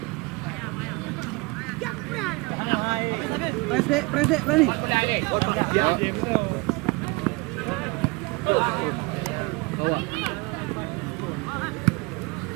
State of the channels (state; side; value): quieter; left; 26.5 dB